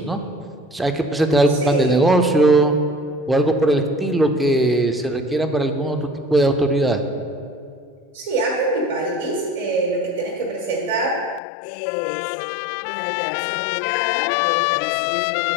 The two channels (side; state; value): right; drops out; at 11.4 s